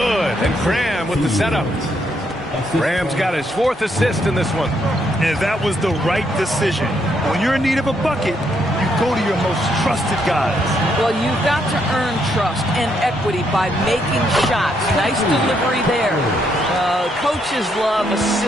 And Graham with the setup. Graham's got his 4th assist in this one. And that was the right decision. When you're in need of a bucket, you go to your most trusted guys. Well, you've got to earn trust and equity by making shots. Nice delivery there. Coaches love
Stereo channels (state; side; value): normal; both; correlation 0.75